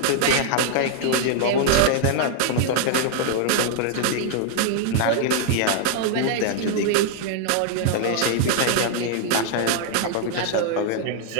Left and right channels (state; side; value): different; both; correlation 0.00